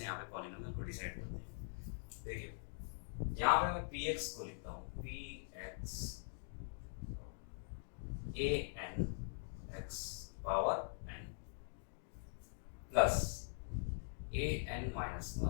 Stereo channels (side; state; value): right; silent; digital silence